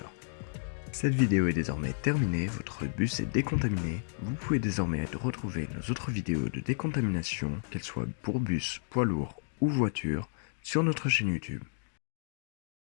Cette vidéo est désormais terminée, votre bus est décontaminé. Vous pouvez désormais retrouver nos autres vidéos de décontamination, qu'elles soient pour bus, poids lourd ou voiture, sur notre chaîne YouTube.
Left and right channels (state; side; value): silent; right; digital silence